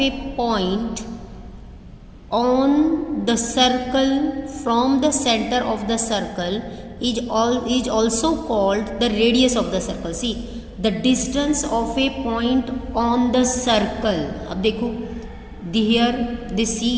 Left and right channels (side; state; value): both; identical; correlation 1.00